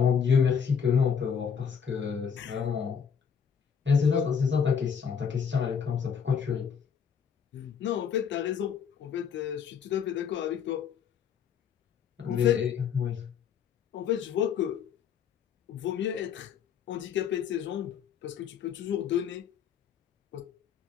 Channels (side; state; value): right; quieter; 7.2 dB